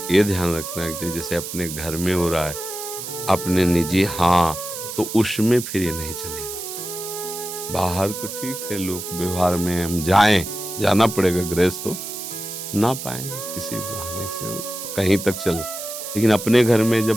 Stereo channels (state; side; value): noise; right; hiss, 8 dB below the sound